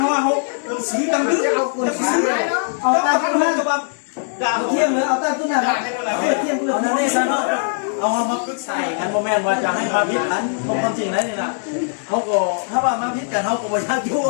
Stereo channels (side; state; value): right; silent; digital silence